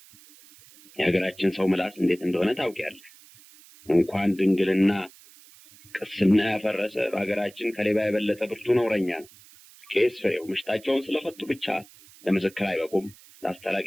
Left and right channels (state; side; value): noise; right; hiss, 24 dB below the sound